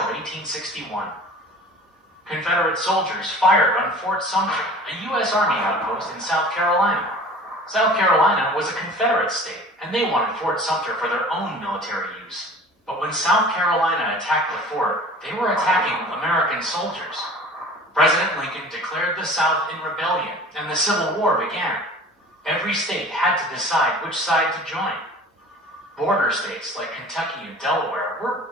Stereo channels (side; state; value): both; normal; correlation 0.43